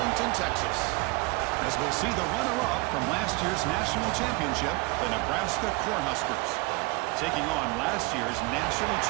Texas. As we'll see the runner-up from last year's national championship, the Nebraska Cornhuskers, taking on last year's national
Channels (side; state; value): left; quieter; 25.0 dB